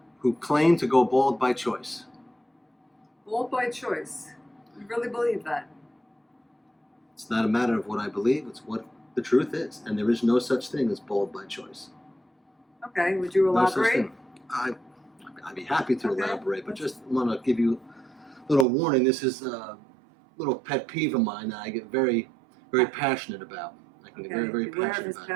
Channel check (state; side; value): drops out; left; at 18.7 s